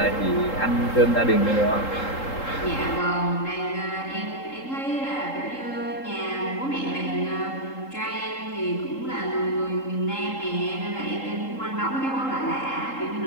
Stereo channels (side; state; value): right; late; 3.8 ms